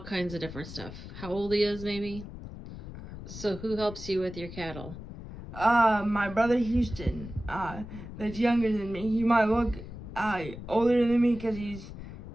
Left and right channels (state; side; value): noise; left; rumble, 12 dB below the sound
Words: of different stuff. How old he is, maybe. So who helps you with your cattle? My brother Houston, that's younger than me. He might look older than me because